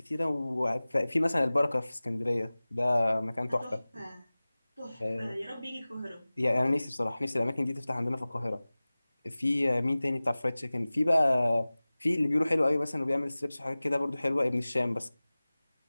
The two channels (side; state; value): both; inverted; correlation -0.98